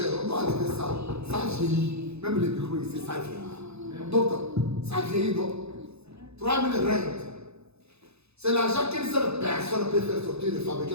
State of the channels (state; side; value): late; left; 0.79 ms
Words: on doit enlever ça. Ça vieillit. Même les micros ici, ça vieillit. Donc, ça vieillit, non? 3000 rentes. C'est l'argent qu'une seule personne peut faire sortir et fabriquer